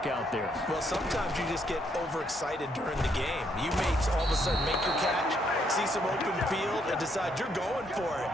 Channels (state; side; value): normal; both; correlation 0.73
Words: out there. Well, sometimes you just get overexcited during the game. You may all of a sudden make your catch, see some open field, and decide you're going for it,